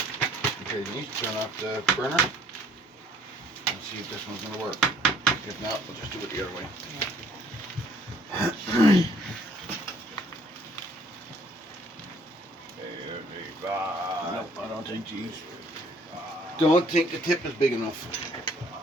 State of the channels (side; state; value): both; normal; correlation 0.60